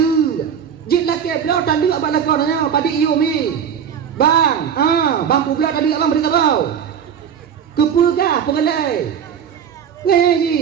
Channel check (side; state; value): left; quieter; 8.0 dB